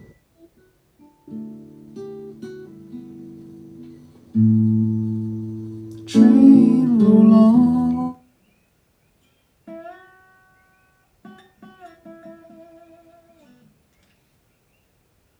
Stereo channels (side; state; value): both; identical; correlation 1.00